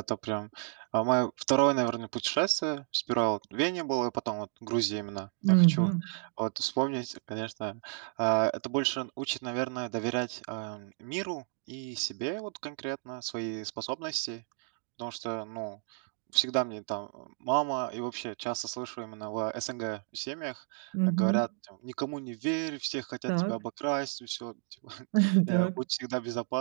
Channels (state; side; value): silent; left; 56 dB below the other